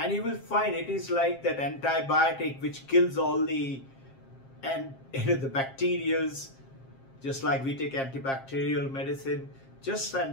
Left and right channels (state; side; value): late; right; 7.5 ms